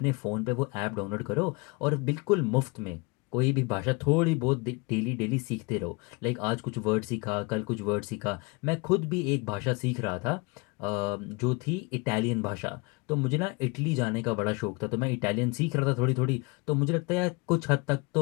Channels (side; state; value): right; quieter; 28.0 dB